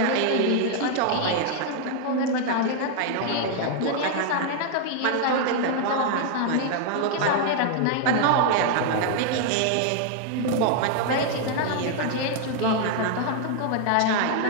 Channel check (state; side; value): different; both; correlation 0.00